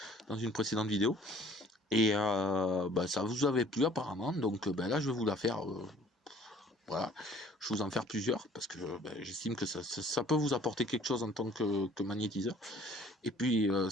dans une précédente vidéo. Et ça vous avait plu apparemment, donc là je vais vous la faire. Voilà, je vais vous en faire plusieurs parce que j'estime que ça peut vous apporter quelque chose en tant que magnétiseur. Et puis,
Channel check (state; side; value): normal; both; correlation 0.54